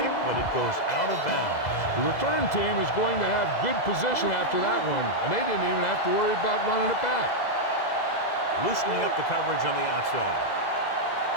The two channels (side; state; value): right; late; 2.0 ms